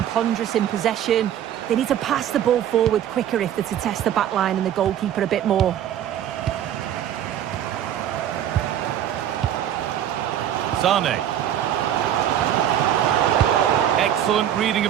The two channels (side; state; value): left; quieter; 10.6 dB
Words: ponderous in possession. They need to pass the ball forward quicker if they're to test the back line and the goalkeeper a bit more. Sané. Excellent reading